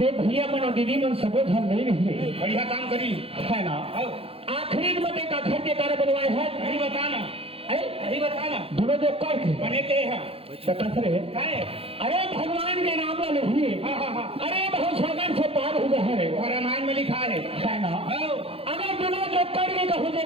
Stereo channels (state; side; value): late; left; 0.28 ms